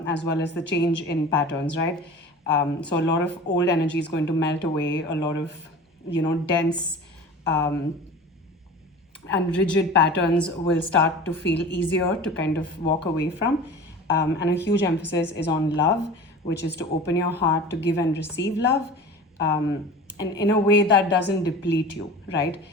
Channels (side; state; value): both; normal; correlation 0.37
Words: as well as the change in patterns, right? So a lot of old energy is going to melt away. A lot of, dense and rigid patterns will start to feel easier to kind of walk away from. And a huge emphasis is on love, which is to open your heart to give and receive love, and in a way that doesn't deplete you, right?